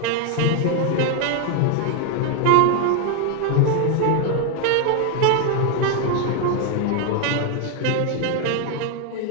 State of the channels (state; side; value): different; both; correlation 0.01